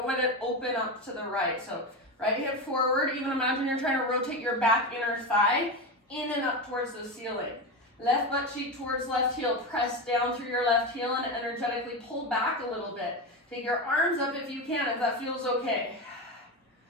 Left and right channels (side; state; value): both; normal; correlation 0.18